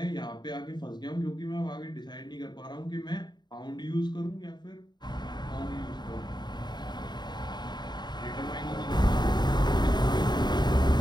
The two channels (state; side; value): late; right; 0.21 ms